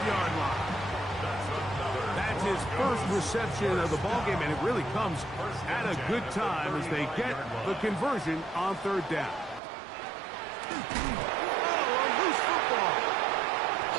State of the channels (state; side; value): drops out; left; at 9.6 s